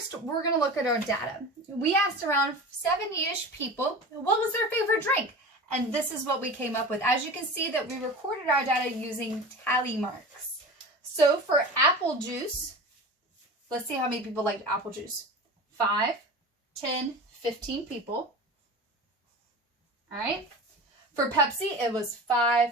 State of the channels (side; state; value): both; normal; correlation 0.33